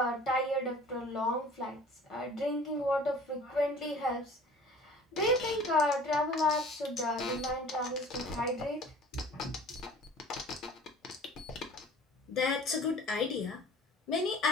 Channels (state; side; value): normal; both; correlation 0.46